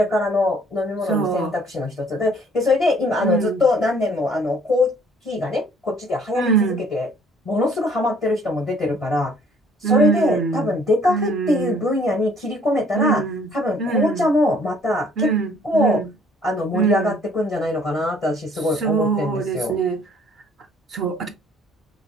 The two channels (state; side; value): normal; both; correlation 0.59